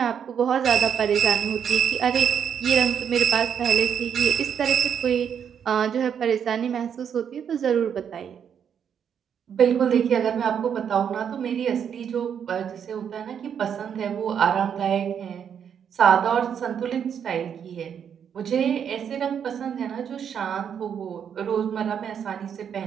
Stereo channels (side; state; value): left; quieter; 8.1 dB